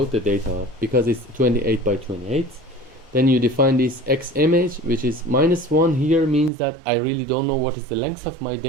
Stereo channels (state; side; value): drops out; left; at 6.5 s